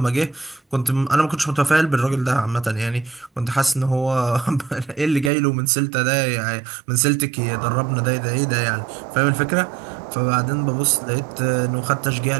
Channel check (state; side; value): drops out; left; at 5.3 s